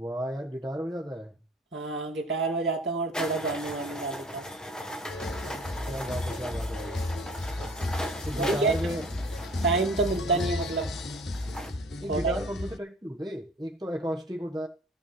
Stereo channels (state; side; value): normal; both; correlation 0.47